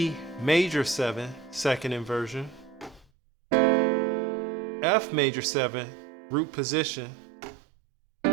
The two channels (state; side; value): drops out; left; at 3.1 s